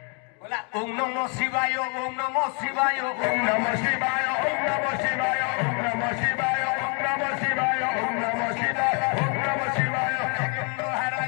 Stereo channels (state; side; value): quieter; right; 36.7 dB